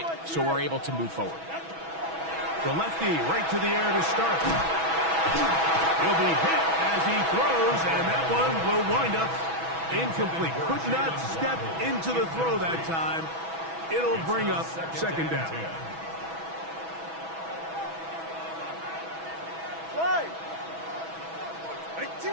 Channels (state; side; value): late; left; 6.1 ms